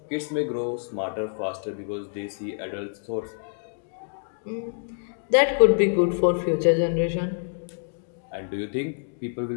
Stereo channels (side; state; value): right; silent; digital silence